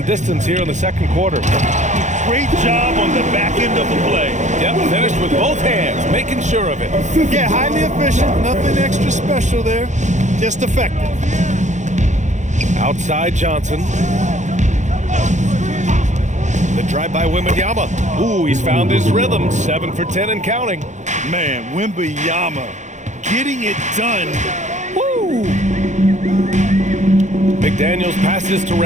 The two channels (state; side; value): late; left; 0.35 ms